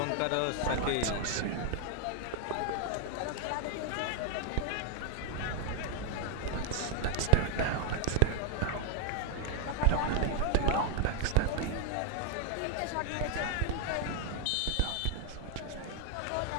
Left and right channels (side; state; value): both; different; correlation 0.00